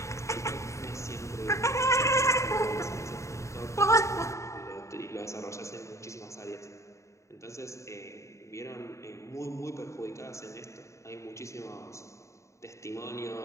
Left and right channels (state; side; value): late; right; 0.14 ms